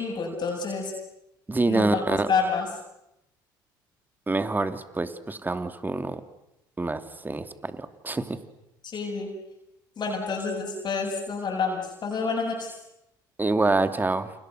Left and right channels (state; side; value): normal; both; correlation 0.72